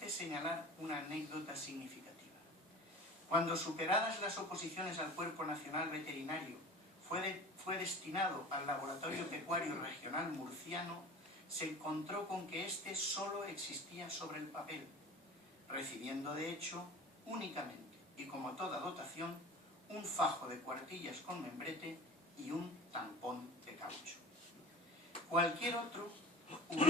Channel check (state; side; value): normal; both; correlation 0.39